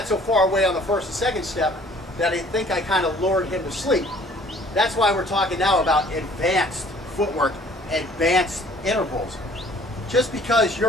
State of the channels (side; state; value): both; normal; correlation 0.54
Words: so far away on the first and second step that I think I kind of lured him to sleep. That's why we're talking now about advanced footwork, advanced intervals. Just because